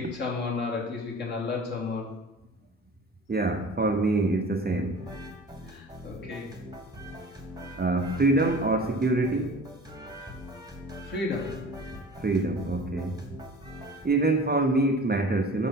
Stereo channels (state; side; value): normal; both; correlation 0.41